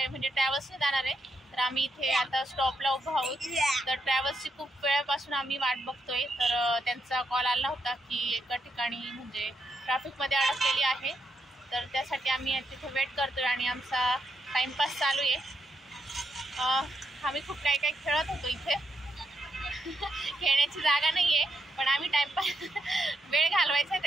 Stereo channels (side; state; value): both; normal; correlation 0.81